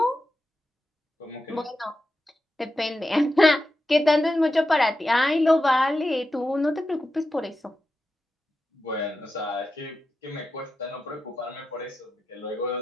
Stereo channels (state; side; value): normal; both; correlation 0.90